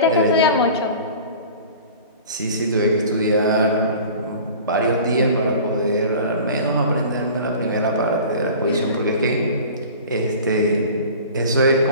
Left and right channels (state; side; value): inverted; both; correlation -0.41